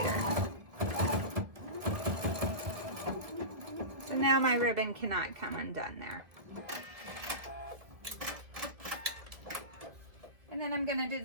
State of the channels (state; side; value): late; left; 1.9 ms